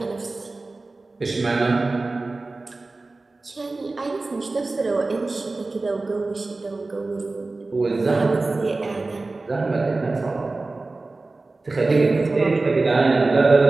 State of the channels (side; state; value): left; quieter; 3.4 dB